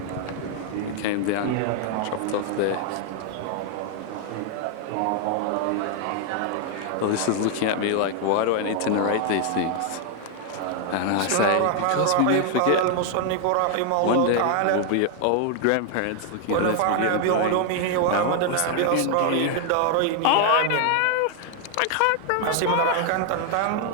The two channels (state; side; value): different; both; correlation 0.00